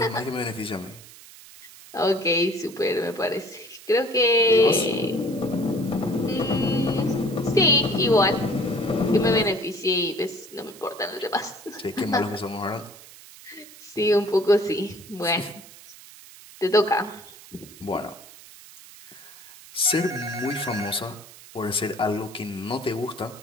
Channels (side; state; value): right; noise; hiss, 19 dB below the sound